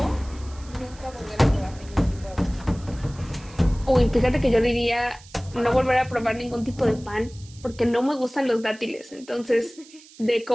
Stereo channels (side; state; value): right; noise; hiss, 22 dB below the sound